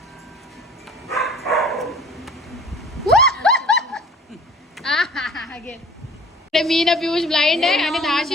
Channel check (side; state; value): both; normal; correlation 0.47